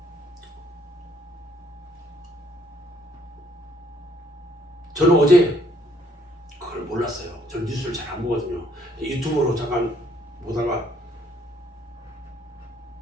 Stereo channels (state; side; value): normal; both; correlation 0.66